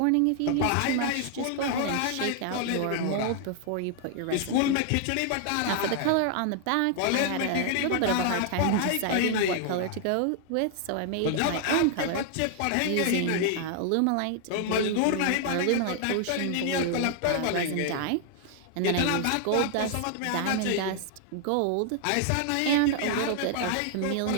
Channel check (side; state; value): both; different; correlation 0.00